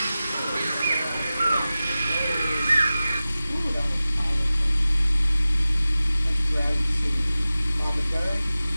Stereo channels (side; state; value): both; inverted; correlation -0.96